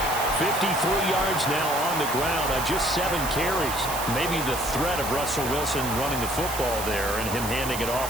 53 yards now on the ground on just 7 carries. Maybe the threat of Russell Wilson running the football there and him handing it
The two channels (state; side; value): noise; right; hiss, 7 dB below the sound